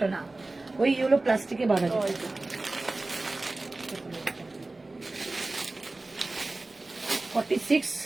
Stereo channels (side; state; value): left; quieter; 3.1 dB